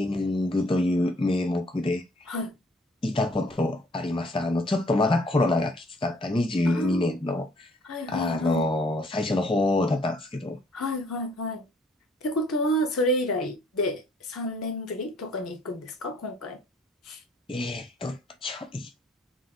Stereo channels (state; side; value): normal; both; correlation 0.62